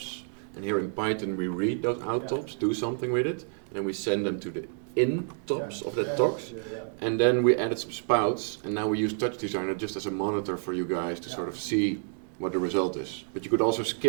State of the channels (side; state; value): left; silent; 59 dB below the other